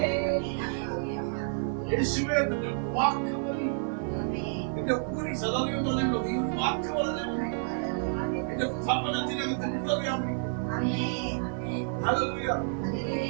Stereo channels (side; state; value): left; silent; 58 dB below the other